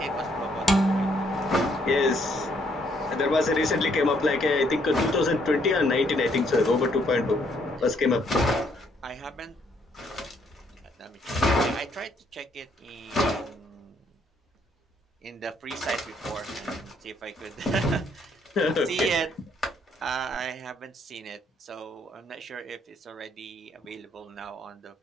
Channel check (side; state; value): both; normal; correlation 0.69